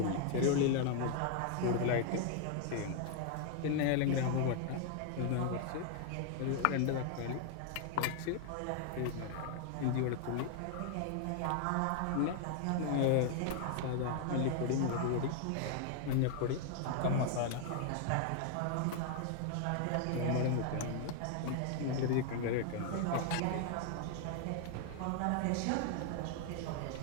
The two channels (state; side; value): different; both; correlation 0.00